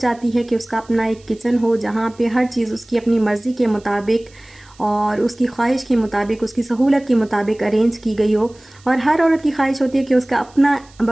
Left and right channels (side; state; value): right; noise; hiss, 28 dB below the sound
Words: है कि उसका अपना एक किचन हो जहाँ पे हर चीज़ उसकी अपनी मर्ज़ी के मुताबिक और उसकी ख्वाहिश के मुताबिक, उसकी सहूलत के मुताबिक अरेंज की गई हो। और हर औरत की ख्वाहिश होती है कि उसका अपना